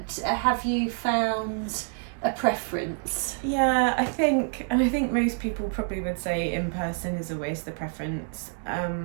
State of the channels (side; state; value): left; silent; 55 dB below the other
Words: have you found a preference? I think most people probably would say in person is always the preference.